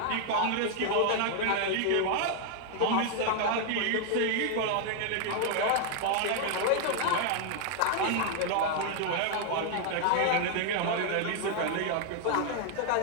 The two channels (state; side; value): different; both; correlation 0.00